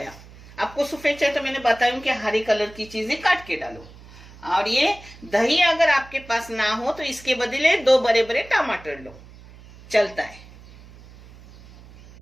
आपको सफेद चाहिए तो मैंने बताया कि हरी कलर की चीजें काट के डालो। और ये दही अगर आपके पास ना हो तो इसके बदले 2 बड़े बड़े टमाटर लो, चलता है।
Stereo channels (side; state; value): right; noise; hum, 21 dB below the sound